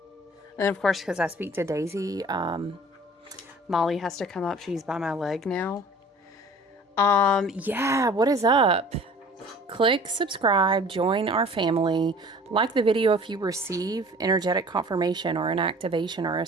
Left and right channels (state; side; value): normal; both; correlation 0.47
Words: And of course, because I speak to Daisy, Molly has to come up. She's by my leg now. Yeah, what is up? Click subscribe, join our family, like the video if you receive energetic confirmation or an activation or a